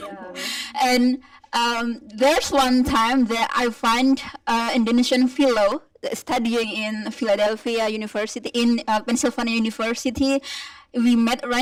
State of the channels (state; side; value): identical; both; correlation 1.00